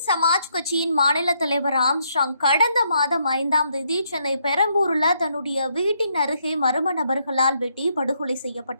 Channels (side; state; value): both; inverted; correlation -0.75